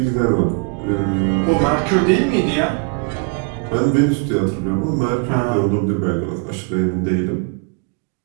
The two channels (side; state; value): left; quieter; 32.9 dB